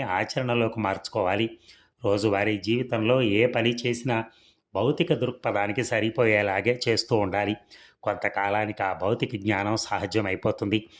ఆచరణలోకి మార్చుకోవాలి. రోజువారీ జీవితంలో ఏ పని చేసినా భౌతిక దృక్పథానికి సరిపోయేలాగే చేస్తూ ఉండాలి. కొంతకాలానికి ఆ భౌతిక జ్ఞానం సహజమైపోతుంది.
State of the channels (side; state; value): both; identical; correlation 1.00